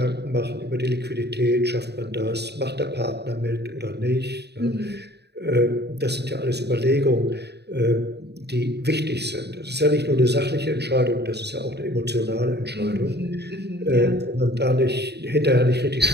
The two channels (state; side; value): late; left; 0.48 ms